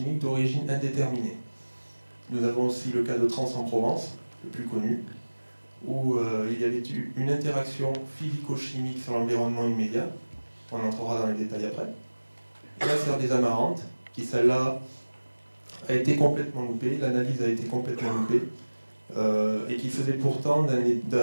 d'origine indéterminée. Nous avons aussi le cas de Trans en Provence, le plus connu, où il y avait eu une interaction physico-chimique sur l'environnement immédiat. On entrera dans les détails après. La serre des Amarantes, qui celle-là a été complètement loupée, l'analyse a été complètement loupée, et qui faisait pourtant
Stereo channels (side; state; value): both; inverted; correlation -1.00